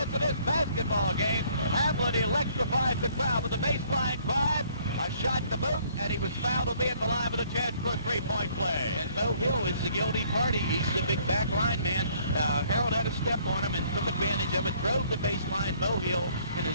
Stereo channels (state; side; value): inverted; both; correlation -0.62